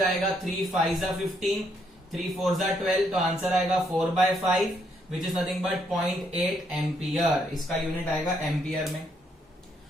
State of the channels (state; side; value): normal; both; correlation 0.73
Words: 3 5 जा 15, 3 4 जा 12, तो आंसर आएगा 4/5 which is nothing but 0.8 ampere. इसका यूनिट आएगा एम्पियर में.